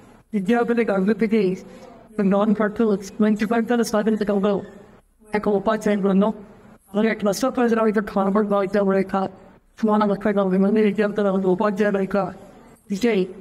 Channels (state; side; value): identical; both; correlation 1.00